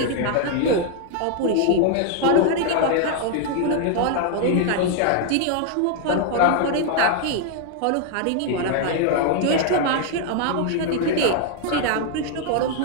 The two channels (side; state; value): both; different; correlation 0.00